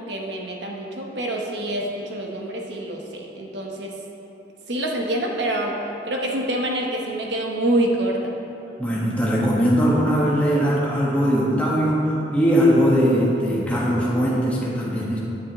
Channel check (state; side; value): normal; both; correlation 0.66